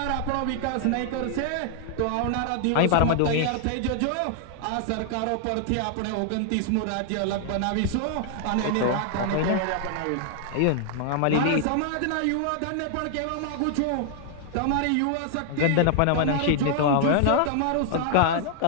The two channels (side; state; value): both; different; correlation -0.01